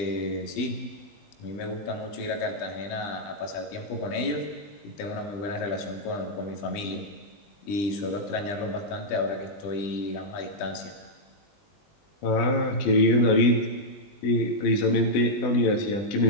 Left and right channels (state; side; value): late; right; 20 ms